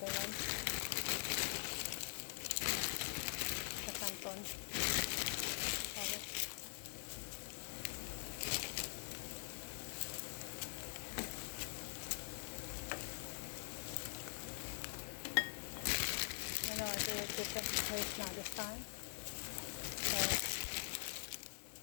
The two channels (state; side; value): silent; right; digital silence